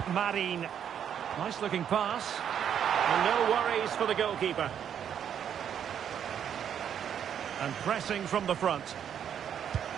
Marin. Nice looking pass. And no worries for the goalkeeper. And pressing from the front.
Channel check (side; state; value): left; quieter; 8.8 dB